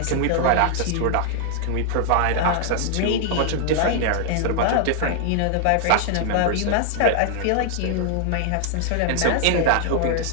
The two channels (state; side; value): different; both; correlation 0.00